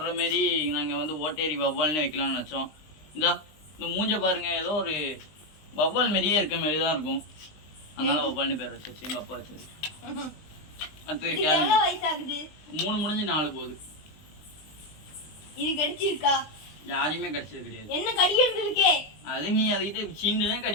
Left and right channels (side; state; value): right; late; 20 ms